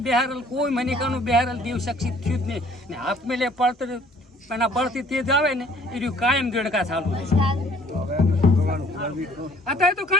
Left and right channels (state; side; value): normal; both; correlation 0.58